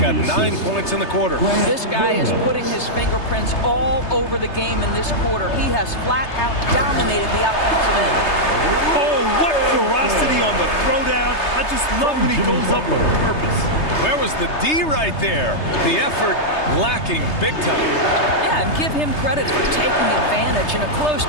9 points in the quarter. This guy is putting his fingerprints all over the game in this quarter. He has flat out dominated the offensive end. Oh, what ferocity on the throwdown. I just love when he goes up with purpose. Where was the D right there? The effort lacking big time. Yeah, and give him credit for taking advantage in a close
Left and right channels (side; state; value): right; late; 3.3 ms